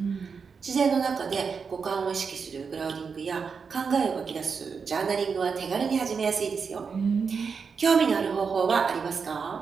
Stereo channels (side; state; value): left; quieter; 5.6 dB